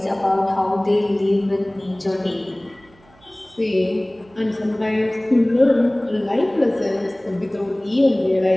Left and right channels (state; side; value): noise; right; hum, 29 dB below the sound